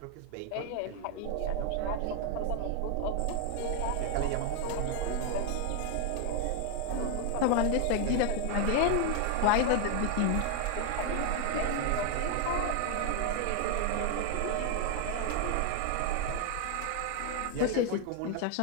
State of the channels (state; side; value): different; both; correlation 0.01